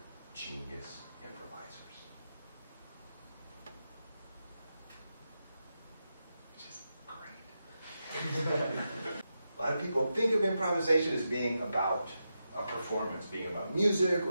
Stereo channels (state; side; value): inverted; both; correlation -0.88